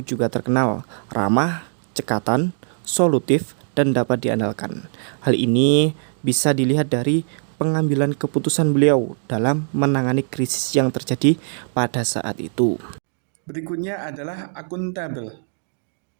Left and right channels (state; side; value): silent; left; 65 dB below the other